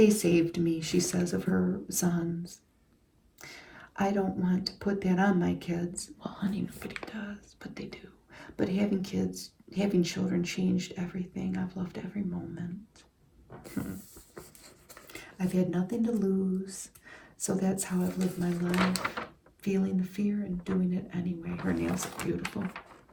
saved me, she says of her sons. I don't want to put that on my kids. Well, honey, nobody does, but they do. But having kids, having children changed everything. I've loved every moment. I've had nothing to lose, so that's how I've lived my life, feeling the fear and doing it anyway. Her nails are beautiful.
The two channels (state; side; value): identical; both; correlation 1.00